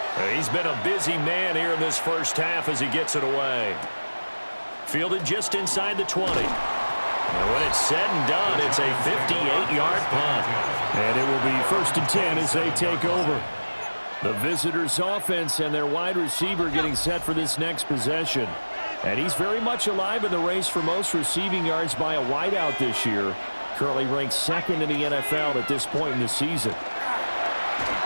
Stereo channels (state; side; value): inverted; both; correlation -1.00